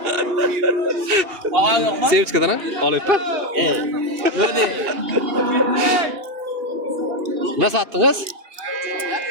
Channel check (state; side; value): late; left; 2.8 ms